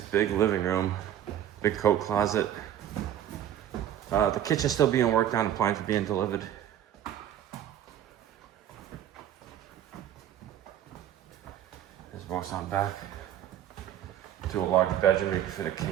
big living room, big coat closet. The kitchen's still being worked on, appliances being delivered. There's walks on back. To a large bedroom, you can fit a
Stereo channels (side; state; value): left; quieter; 10.9 dB